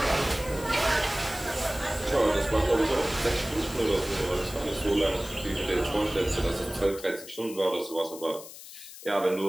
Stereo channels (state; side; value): noise; left; hiss, 15 dB below the sound